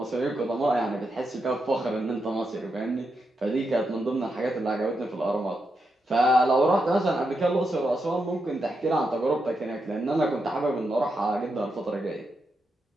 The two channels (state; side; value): normal; both; correlation 0.84